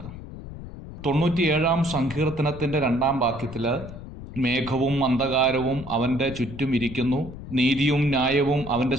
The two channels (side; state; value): left; noise; rumble, 12 dB below the sound